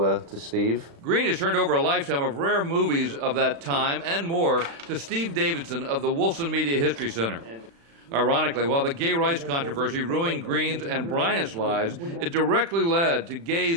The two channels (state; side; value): late; left; 36 ms